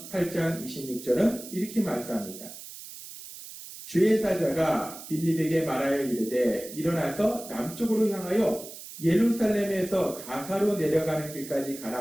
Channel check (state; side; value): noise; right; hiss, 13 dB below the sound